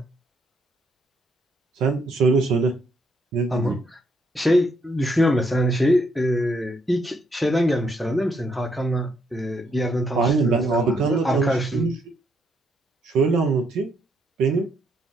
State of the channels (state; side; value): normal; both; correlation 0.73